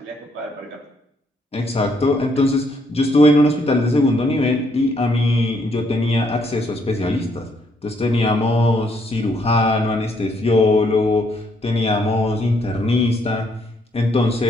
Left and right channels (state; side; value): normal; both; correlation 0.71